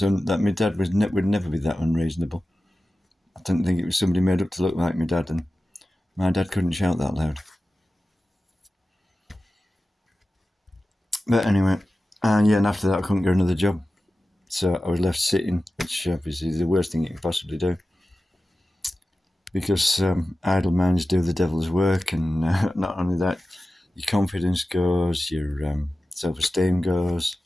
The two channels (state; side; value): normal; both; correlation 0.94